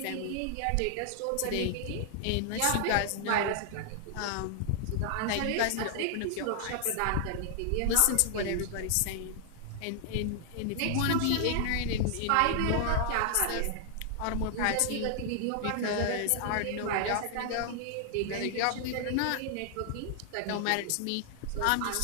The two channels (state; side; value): different; both; correlation 0.00